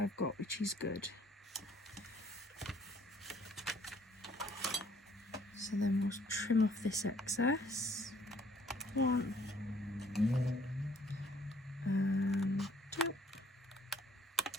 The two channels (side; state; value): both; normal; correlation 0.60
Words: got, which is good. So then we'll trim off this excess. 1 and 2.